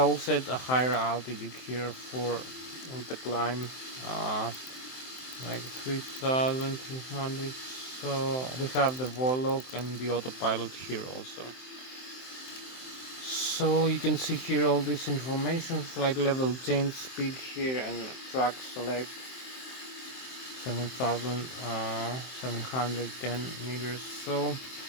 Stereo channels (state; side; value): late; right; 23 ms